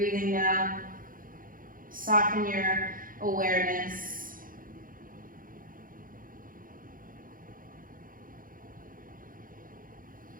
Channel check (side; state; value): left; late; 0.40 ms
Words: now. Soften your awareness.